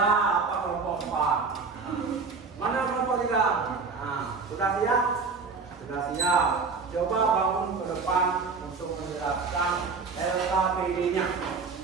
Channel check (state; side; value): quieter; left; 4.7 dB